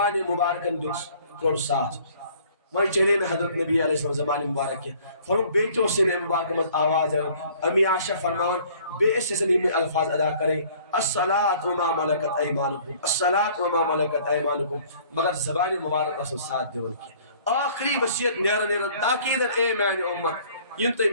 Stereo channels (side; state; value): both; inverted; correlation -0.55